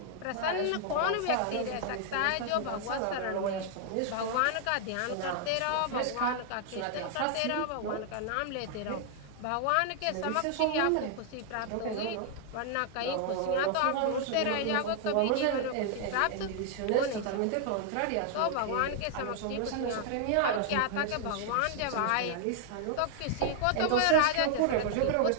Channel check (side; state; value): both; different; correlation 0.00